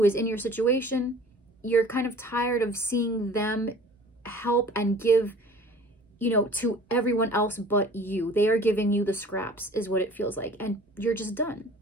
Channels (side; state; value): both; normal; correlation 0.47